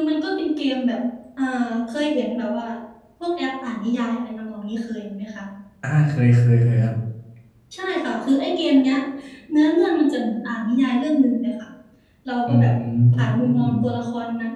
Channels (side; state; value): both; identical; correlation 1.00